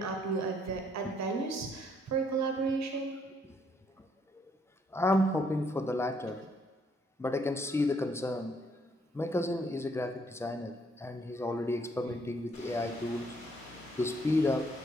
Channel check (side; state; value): both; normal; correlation 0.69